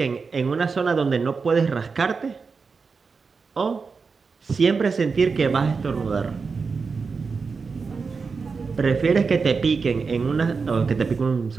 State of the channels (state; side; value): quieter; left; 4.9 dB